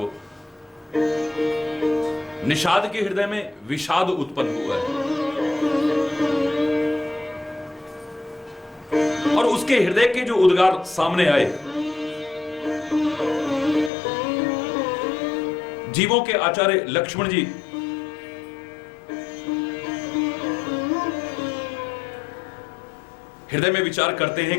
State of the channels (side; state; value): right; drops out; at 13.9 s